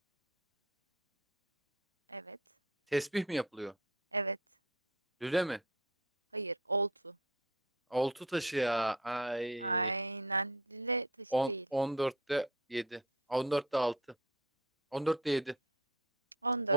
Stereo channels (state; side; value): normal; both; correlation 0.36